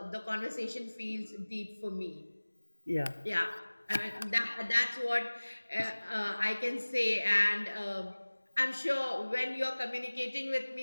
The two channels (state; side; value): inverted; both; correlation -1.00